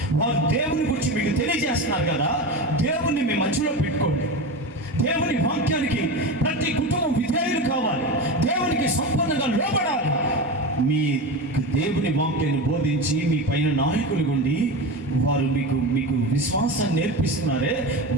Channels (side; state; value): both; normal; correlation 0.23